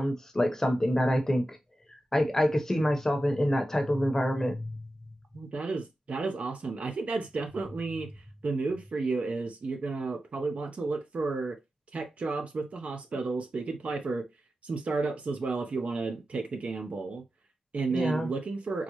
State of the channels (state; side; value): normal; both; correlation 0.92